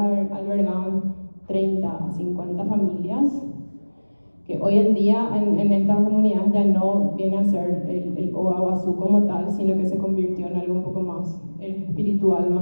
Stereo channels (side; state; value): both; inverted; correlation -1.00